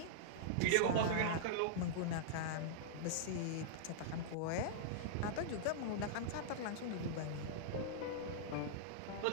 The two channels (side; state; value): both; different; correlation -0.02